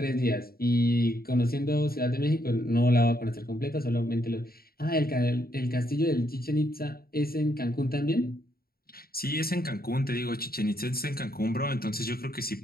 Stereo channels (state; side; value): late; right; 0.44 ms